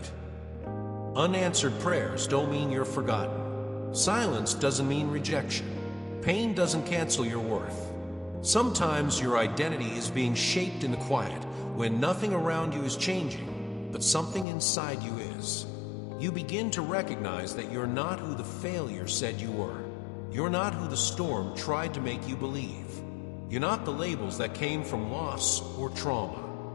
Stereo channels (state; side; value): drops out; right; at 14.5 s